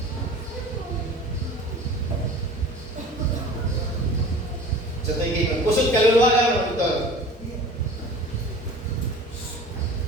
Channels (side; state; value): both; normal; correlation 0.41